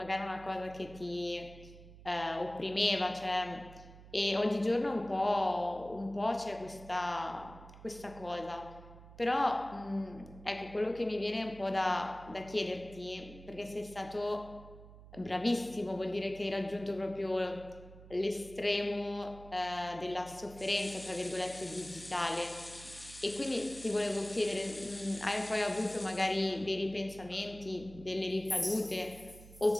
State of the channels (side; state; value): right; noise; hum, 18 dB below the sound